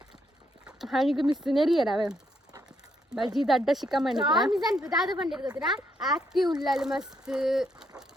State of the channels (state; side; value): normal; both; correlation 0.75